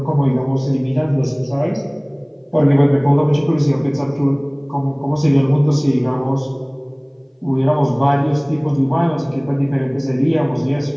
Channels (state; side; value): identical; both; correlation 1.00